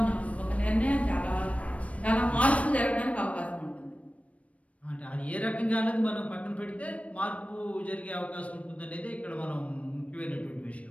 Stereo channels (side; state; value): right; late; 0.065 ms